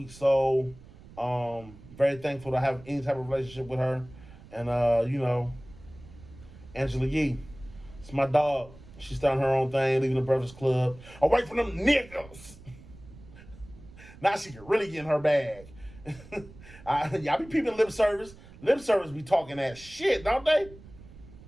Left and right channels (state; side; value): noise; right; rumble, 20 dB below the sound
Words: soul. Very thankful to have any type of relationship with her. And Angela Yee, it's my dog. She's starting her own thing, leaving the Breakfast Club, away from them niggas. Now she can really get in her bag. Y'all be peeping lip service. Lip service be talking that shit, don't they?